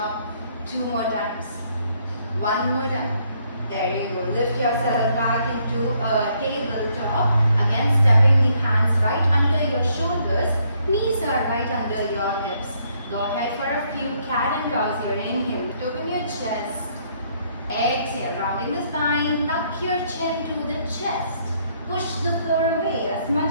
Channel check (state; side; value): inverted; both; correlation -0.70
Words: 2 more times. 1 more time. There you go. Lift yourself back into a tabletop. Again, stepping the hands right under your shoulders. Knees are right under your hips. Go ahead for a few cat and cows here. Inhale, open your chest. Exhale, rounding the spine. Tuck your chin to the chest. Push the floor away as much